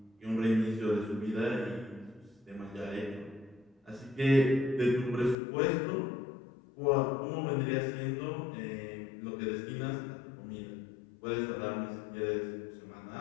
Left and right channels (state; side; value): drops out; right; at 5.4 s